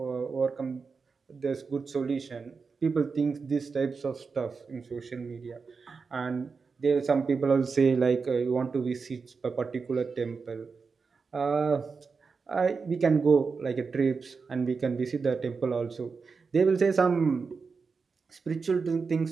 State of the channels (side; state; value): left; quieter; 5.0 dB